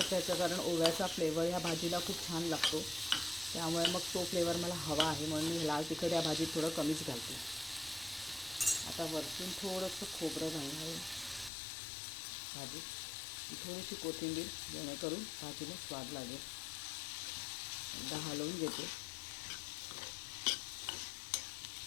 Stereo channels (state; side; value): drops out; right; at 11.5 s